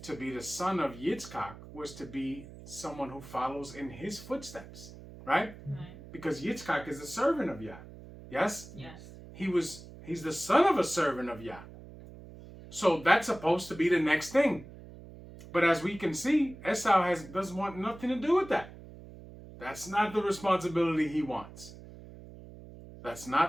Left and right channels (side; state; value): right; noise; hum, 16 dB below the sound